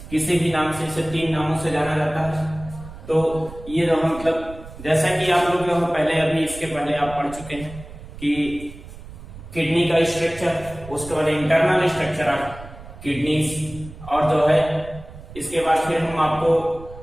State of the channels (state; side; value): noise; right; rumble, 15 dB below the sound